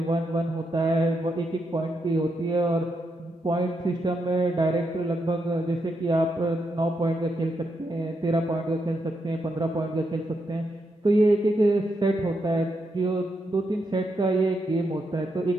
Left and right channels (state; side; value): normal; both; correlation 0.82